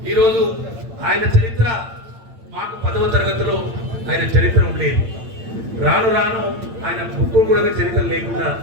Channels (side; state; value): left; late; 8.9 ms